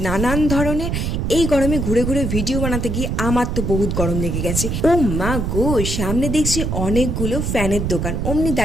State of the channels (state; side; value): noise; right; rumble, 1 dB below the sound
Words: নানান ধরনের। এই গরমে ঘুরে ঘুরে ভিডিও বানাতে গিয়ে আমার তো বহুত গরম লেগে গেছে। ও মা গো, সামনে দেখছি অনেকগুলো ফ্যানের দোকান। অমনি